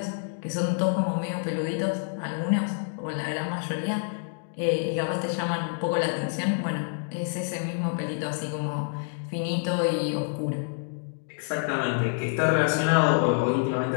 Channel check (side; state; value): right; silent; digital silence